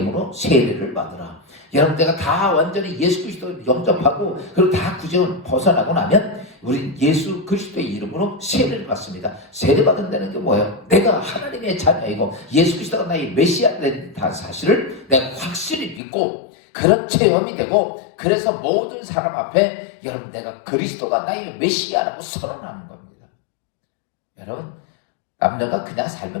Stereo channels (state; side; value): drops out; right; at 16.0 s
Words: 세례를 받으라. 여러분 내가 다 완전히 예수 그리스도를 영접하고 그리고 다 구제를 벗어나고 나면 우린 예수 그리스도의 이름으로 세례를 받습니다. 세례 받는다는 게 뭐예요? 내가 하나님의 자녀이고 예수 그리스도가 나의 메시아가 된 사실을 내가 확실히 믿고 그런 체험이 되고 그래서 모든 사람 앞에 여러분 내가 그리스도가 나의 메시아라고 선언하는 겁니다. 여러분 남녀가 그냥